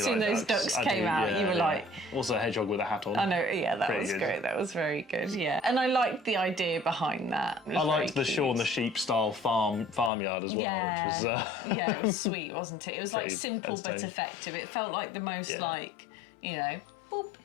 like soon as those ducks came out, you were like... Also a hedgehog with a hat on. I know, yeah, that Pretty was good. great. That was very good, yeah. And I liked the idea behind that. I liked the Shaun the Sheep style farmyard as well. Yeah, which was, yeah, it was sweet, wasn't it? It was like pretty simple but entertaining. effective. It felt like the most like, you know, boop,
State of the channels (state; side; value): drops out; right; at 10.1 s